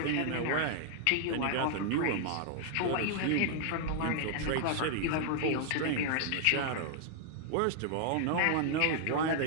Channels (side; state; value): both; different; correlation -0.01